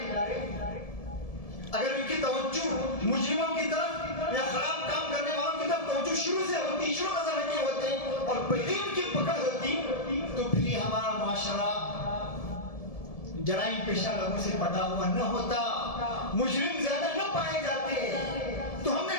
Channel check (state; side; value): late; right; 1.7 ms